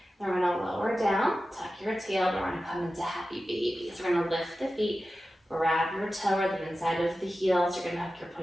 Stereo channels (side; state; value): both; normal; correlation 0.94